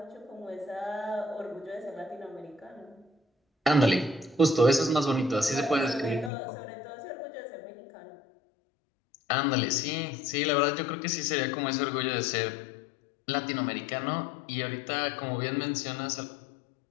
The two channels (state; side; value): drops out; right; at 6.3 s